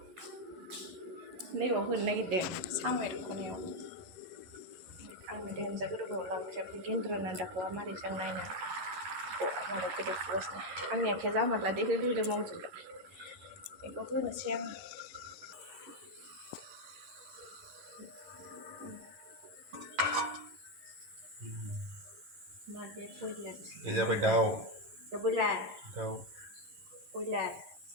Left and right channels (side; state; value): left; late; 11 ms